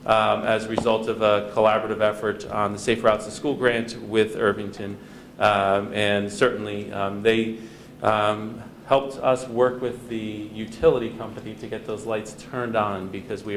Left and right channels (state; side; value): identical; both; correlation 1.00